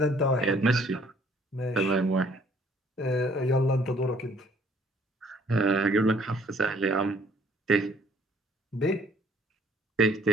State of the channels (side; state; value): both; normal; correlation 0.60